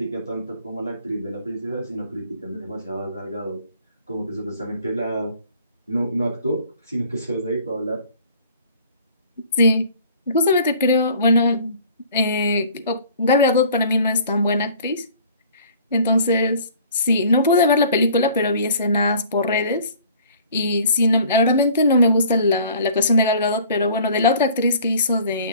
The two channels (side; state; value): both; inverted; correlation -0.51